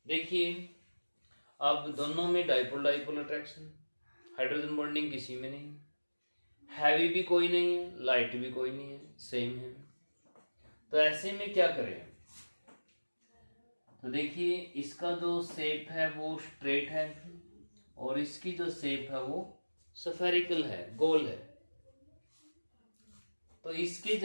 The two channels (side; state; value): both; inverted; correlation -1.00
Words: देखिए अब दोनों में dipole dipole attraction, hydrogen bonding किसी में नहीं, हैवी भी कोई नहीं है, लाइट भी कोई नहीं है, सेम है। तो ऐसे में क्या करें? तो देखिए इसका जो शेप है वो स्ट्रेट है और इसकी जो शेप है वो स्फेरिकल है, गोल है। तो इसके